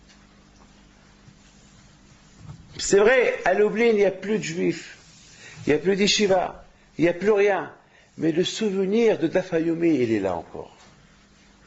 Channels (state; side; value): identical; both; correlation 1.00